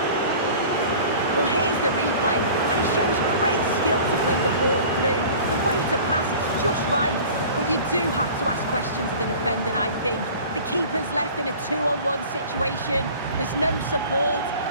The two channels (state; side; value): inverted; both; correlation -0.43